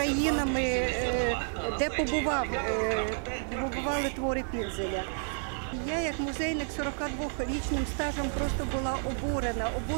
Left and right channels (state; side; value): silent; left; 58 dB below the other